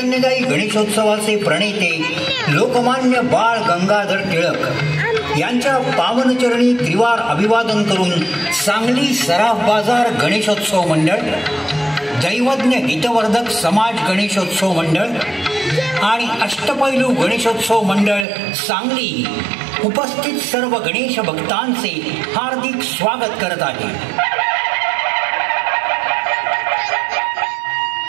गणेशोत्सवाचे प्रणेते लोकमान्य बाळ गंगाधर टिळक यांच्या पावनचरणी त्रिवार अभिवादन करून सांगली सराफ बाजार गणेशोत्सव मंडळ, दैवज्ञ हितवर्धक समाज गणेशोत्सव मंडळ आणि अष्टपैलू गणेशोत्सव मंडळ सांगली उपस्थित सर्व गणेश भक्तांचे हार्दिक स्वागत करत आहे.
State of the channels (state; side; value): drops out; left; at 18.2 s